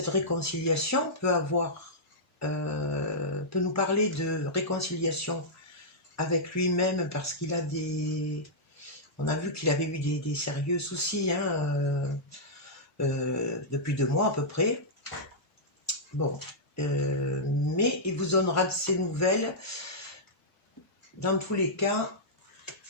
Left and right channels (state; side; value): normal; both; correlation -0.11